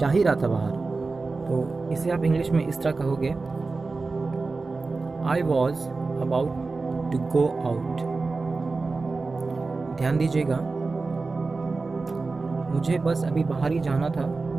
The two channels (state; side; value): quieter; left; 3.9 dB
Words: ही रहा था बाहर, तो इसे आप इंग्लिश में इस तरह कहोगे, I was about to go out. ध्यान दीजिएगा, मुझे बस अभी बाहर ही जाना था,